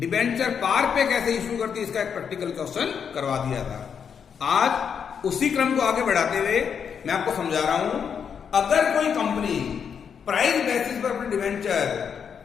पार पे कैसे इशू करती है इसका एक प्रैक्टिकल क्वेश्चन करवा दिया था। आज उसी क्रम को आगे बढ़ाते हुए मैं आपको समझा रहा हूं, अगर कोई कंपनी प्राइस बेसिस पर अपने डिबेंचर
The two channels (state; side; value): quieter; right; 7.1 dB